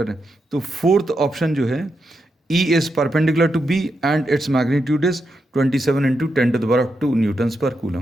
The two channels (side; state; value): both; normal; correlation 0.85